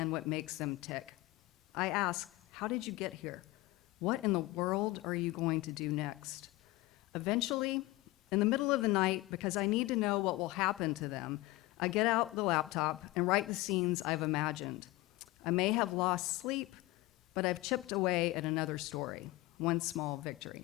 what makes them tick. I ask, how did you get here? What in the world are you going to do next? Eventually, in the middle of the night, because I need to know what will happen to them, I get out the laptop and write the scenes I've imagined. I may have lost sleep, but I've chipped away at another story, one small victory.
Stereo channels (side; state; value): right; quieter; 19.7 dB